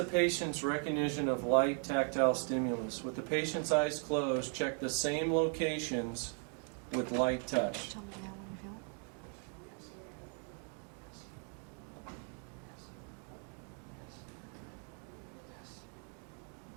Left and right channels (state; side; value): quieter; left; 39.5 dB